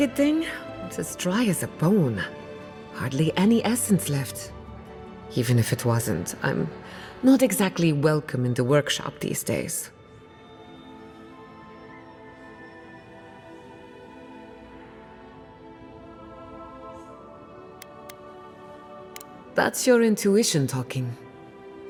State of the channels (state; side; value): identical; both; correlation 1.00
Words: thing? It's as dry as a bone. Hardly any essence left. Even if it wasn't, I'm not exactly welcome in the workshop these days. That's your intuition talking.